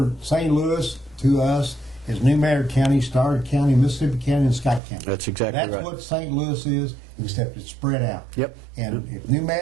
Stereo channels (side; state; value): left; drops out; at 4.8 s